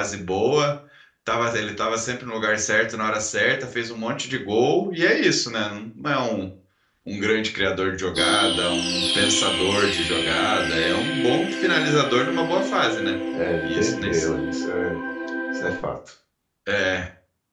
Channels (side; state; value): both; identical; correlation 1.00